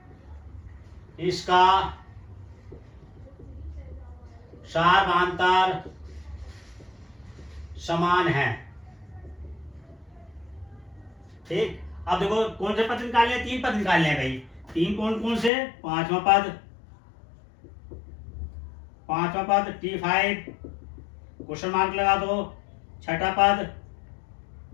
इसका सारवांतर समान है। ठीक। अब देखो कौन से पद निकालने हैं, 3 पद निकालने हैं भाई। 3 कौन से, पांचवा पद T5 क्वेश्चन मार्क लगा दो। छठा पद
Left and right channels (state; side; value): drops out; right; at 15.5 s